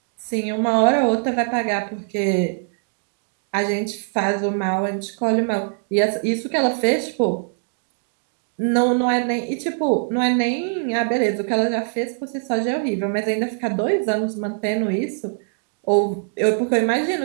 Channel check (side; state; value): left; silent; 64 dB below the other